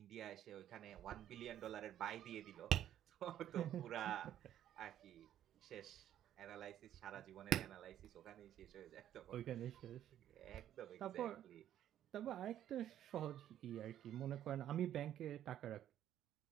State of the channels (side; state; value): left; quieter; 11.3 dB